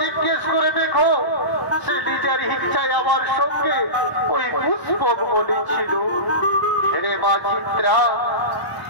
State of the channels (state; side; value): late; right; 1.1 ms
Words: জিজ্ঞেস করে দেখো, সে নিজের ইচ্ছায় আমার সঙ্গে ওই পুষ্পক বলেছিল। হেরে মা